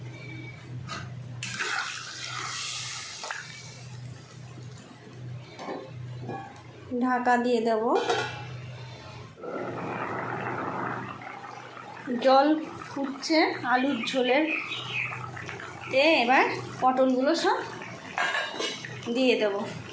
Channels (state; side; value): identical; both; correlation 1.00